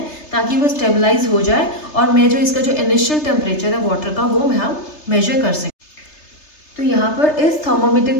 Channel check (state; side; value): late; right; 3.3 ms